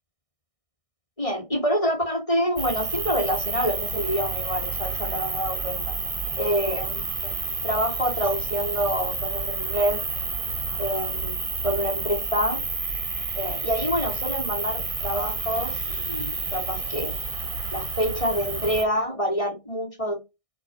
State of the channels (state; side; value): late; right; 1.6 ms